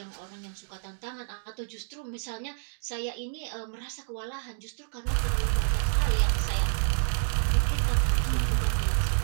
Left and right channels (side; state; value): left; silent; digital silence